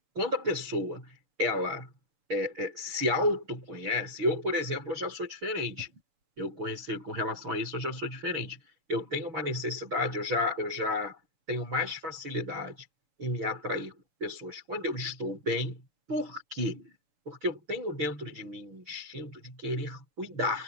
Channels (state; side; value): late; left; 6.8 ms